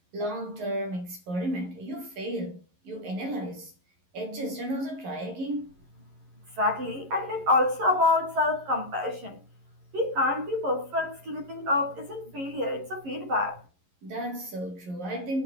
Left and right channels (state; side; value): late; left; 11 ms